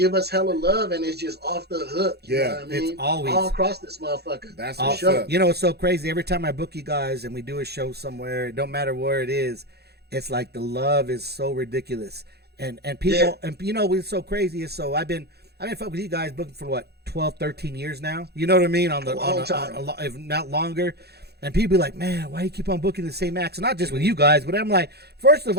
us hella love, and it's just off the hook. You know what I mean? It's always all across this motherfucker. That's for sure. You know, it's so crazy. Every time I book you guys and we do a show somewhere, it don't matter where it is, it's like the love is so ridiculous, and people, and you know, what's so crazy is I've been fucking with you guys booking for what 12, 13 years now. You know what I mean? On if not longer. And people be like, man, why do you keep on booking the same acts? Not just with you guys, but I'm like, first of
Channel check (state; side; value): late; left; 0.47 ms